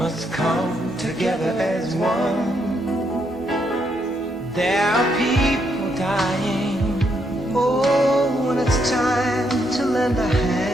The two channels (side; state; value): both; normal; correlation 0.76